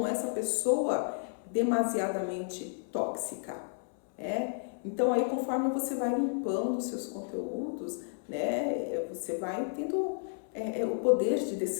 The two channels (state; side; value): silent; right; 56 dB below the other